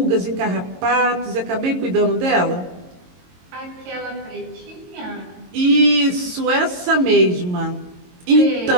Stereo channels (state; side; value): late; left; 22 ms